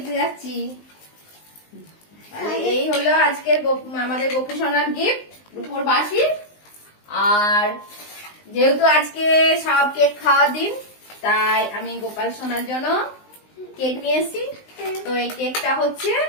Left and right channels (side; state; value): right; late; 19 ms